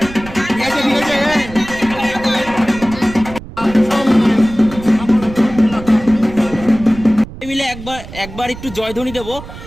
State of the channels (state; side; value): noise; right; rumble, 14 dB below the sound